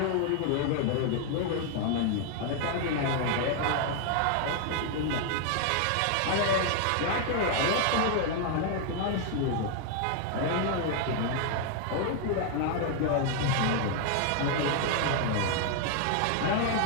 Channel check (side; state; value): both; different; correlation 0.00